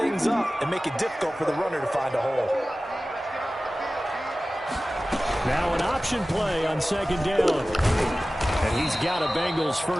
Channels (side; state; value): both; normal; correlation 0.96